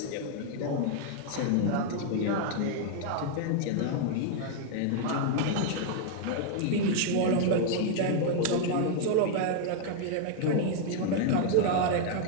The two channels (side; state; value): both; different; correlation 0.00